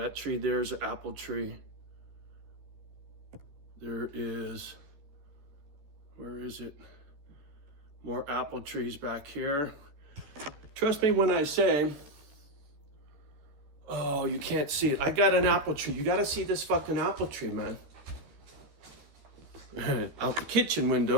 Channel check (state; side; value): late; left; 14 ms